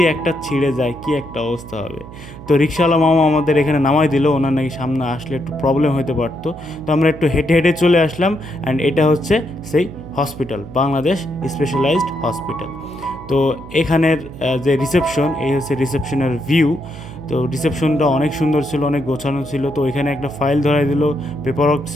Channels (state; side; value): noise; right; hum, 15 dB below the sound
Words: একটা ছিঁড়ে যায় কি একটা অবস্থা হবে। তো রিক্সাওয়ালা মামা আমাদের এখানে নামাই দিল, ওনার নাকি সামনে আসলে একটু প্রবলেম হতে পারতো। তো আমরা একটু হেঁটে হেঁটে চলে আসলাম অ্যান্ড এটা হচ্ছে সেই হসপিটাল, বাংলাদেশ স্পেশালাইজড হসপিটাল। তো এখানের যে রিসেপশন, এই হচ্ছে রিসেপশনের ভিউ। তো রিসেপশনটা অনেক সুন্দর ছিল, অনেক গোছানো ছিল। তো এখানে একটা ফাইল ধরাই দিল, পেপার ওয়ার্ক